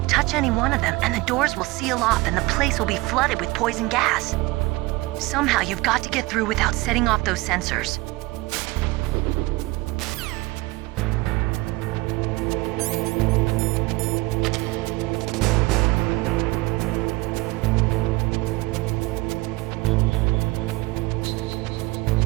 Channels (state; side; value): quieter; left; 21.7 dB